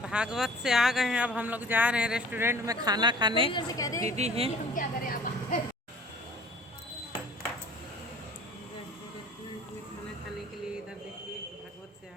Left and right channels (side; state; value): both; normal; correlation 0.49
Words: भागवत से आ गए हैं, अब हम लोग जा रहे हैं रेस्टोरेंट में खाना खाने। दीदी हैं खाना खाने के लिए, इधर देखिए भागवत से आ